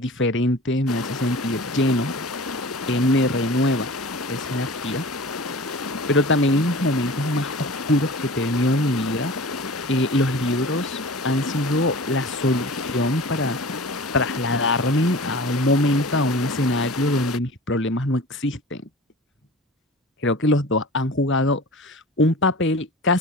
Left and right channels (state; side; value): normal; both; correlation 0.39